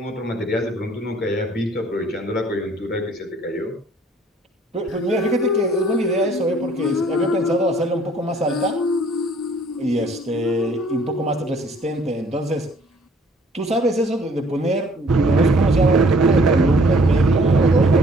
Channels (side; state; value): both; normal; correlation 0.58